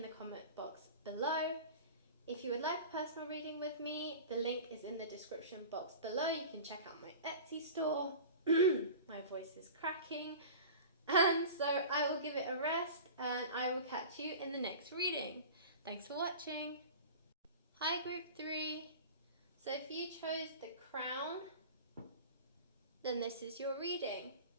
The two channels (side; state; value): both; inverted; correlation -0.36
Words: the comment box below. If you would like a personal reading with me, the link is in the description box below. You can check out my Etsy store. My voice is cracking. And so I will give it a rest, and I will catch you in the next reading. Thanks for watching. Hi, group 3. So if you chose the crown, then this is your reading.